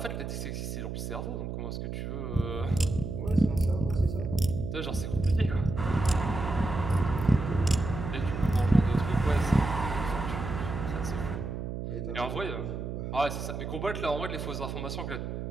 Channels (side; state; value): right; noise; hum, 5 dB below the sound